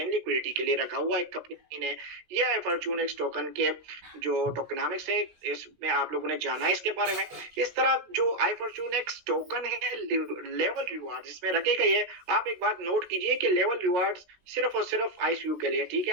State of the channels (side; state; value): left; late; 16 ms